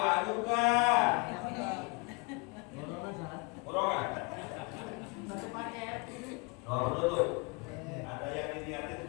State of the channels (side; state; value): right; quieter; 29.7 dB